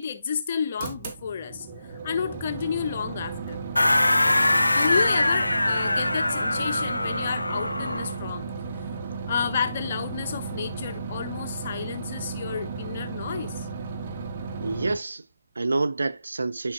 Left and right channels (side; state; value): both; inverted; correlation -0.87